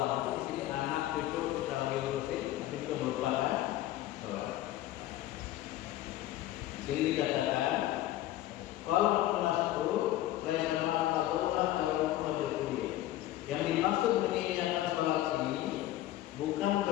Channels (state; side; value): quieter; right; 14.3 dB